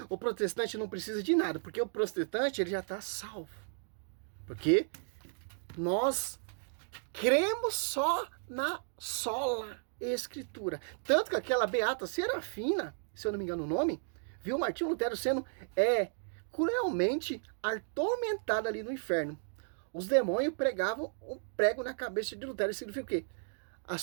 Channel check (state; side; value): silent; left; digital silence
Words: o protestante não precisa de nada, porque o protestante, ele já está salvo. Porque... nós cremos só na sola Escritura. Tanto que aquela beata Serafina, se eu não me engano o nome, viu Martinho Lutero sendo cruelmente atormentada ali no inferno. Os demônios pregavam um prego na cabeça de Lutero. Isso significa o quê? A